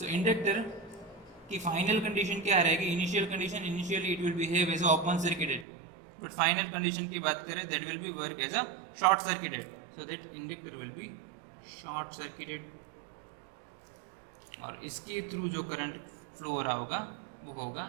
इंडक्टर की फाइनल कंडीशन क्या रहेगी। Initial condition, initially it will behave as a open circuited, but final condition की बात करें that will be work as a short circuited. So that inductor will be short circuited और इसके through जो current flow हो रहा होगा वो होगा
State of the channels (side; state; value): left; drops out; at 5.7 s